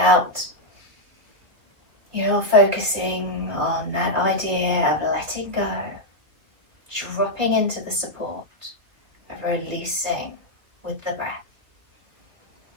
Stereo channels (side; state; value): left; late; 2.5 ms